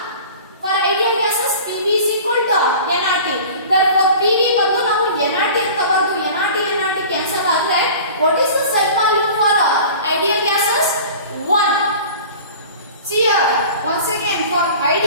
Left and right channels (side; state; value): both; inverted; correlation -0.41